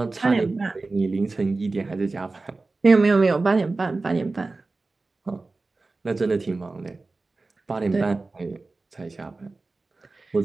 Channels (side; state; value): left; quieter; 3.5 dB